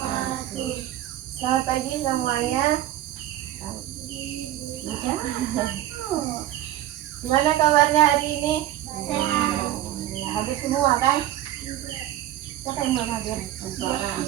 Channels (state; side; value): quieter; left; 13.4 dB